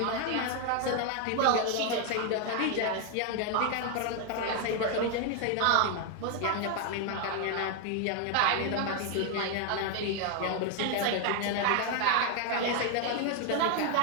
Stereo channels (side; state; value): both; different; correlation 0.01